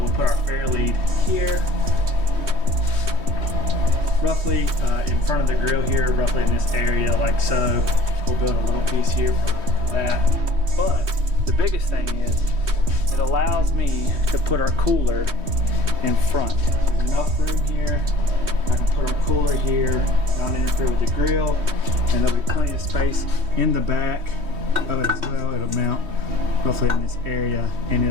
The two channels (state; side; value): late; left; 3.2 ms